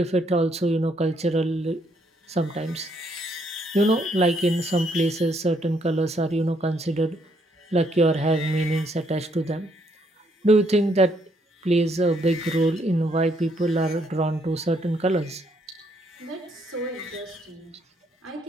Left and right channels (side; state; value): both; normal; correlation 0.71